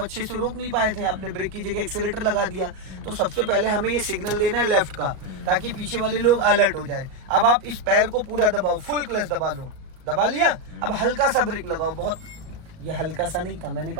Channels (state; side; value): late; left; 38 ms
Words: से रोक नहीं पाए थे, आपने ब्रेक की जगह एक्सेलेरेटर लगा दिया। तो सबसे पहले हमें ये सिग्नल देना है लेफ्ट का, ताकि पीछे वाले लोग अलर्ट हो जाए। अब आप इस पैर को पूरा दबाओ, फुल क्लच दबा लो, दबा लिया। अब हल्का सा ब्रेक लगाओ, बहुत, ये हल्का सा नहीं था, मैंने